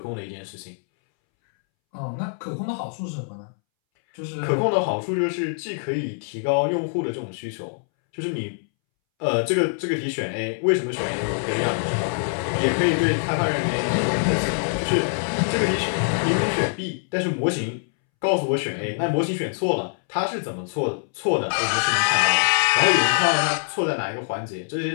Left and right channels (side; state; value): right; silent; 63 dB below the other